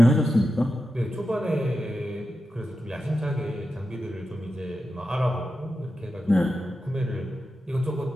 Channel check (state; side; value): normal; both; correlation 0.90